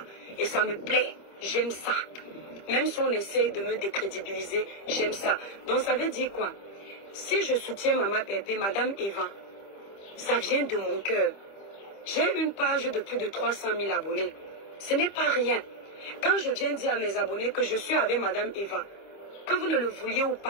Et ça me plaît, j'aime ça. Même si on essaye de me décrédibiliser, j'aime ça. Donc ça veut dire quoi? Si je soutiens Mama Pépé, Madame Eva, ça vient de mon cœur. J'ai une page de plus de 300 000 abonnés. Ce n'est pas rien. Quand je viens dire à mes abonnés que je suis avec Madame Eva, que vous ne le vouliez ou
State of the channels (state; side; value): late; right; 25 ms